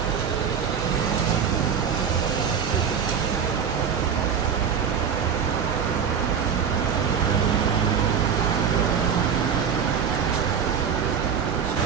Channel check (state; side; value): quieter; left; 7.1 dB